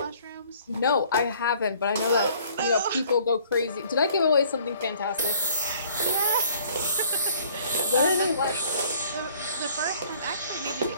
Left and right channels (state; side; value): inverted; both; correlation -0.57